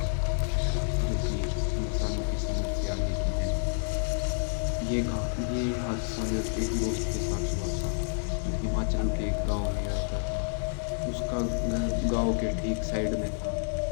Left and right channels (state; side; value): silent; right; digital silence